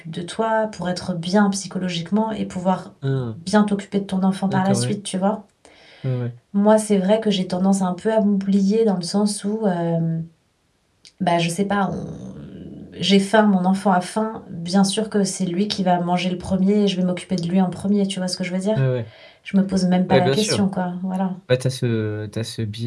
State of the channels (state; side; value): identical; both; correlation 1.00